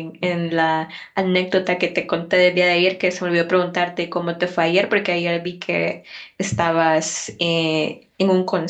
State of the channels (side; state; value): both; identical; correlation 1.00